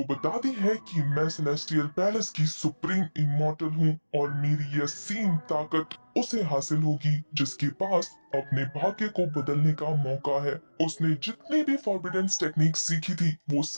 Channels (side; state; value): both; inverted; correlation -1.00